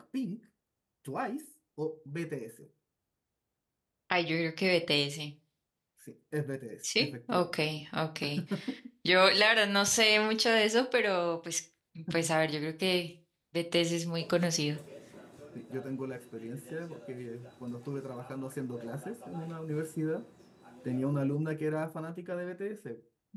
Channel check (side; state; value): both; identical; correlation 1.00